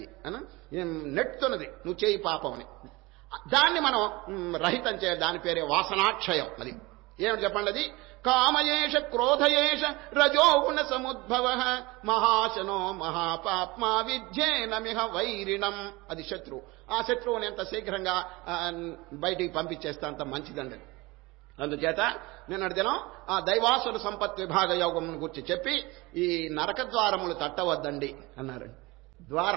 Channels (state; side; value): quieter; left; 22.9 dB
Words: అని నెట్టుతున్నది, నువ్వు చేయి పాపం అని. దాన్ని మనం రహితం చేయాలి. దాని పేరే వాసనాక్షయం. అది ఏమిటి చెప్పండి? అది కామయేష క్రోధయేష రజోగుణ సముద్భవ మహాశనో మహాపాప్మా విద్యేనమిహ వైరిణం. అది శత్రువు. ఆ శత్రువుని ఎంత శీఘ్రంగా బయటికి పంపించేస్తే అంత మంచిదండి. అందుచేత నిన్నటి దినం ఆ దైవాసుర సంపత్ విభాగ యోగం గురించి చెప్పి ఈ నరక ద్వారములు తట్టవద్దండి అన్నారండి.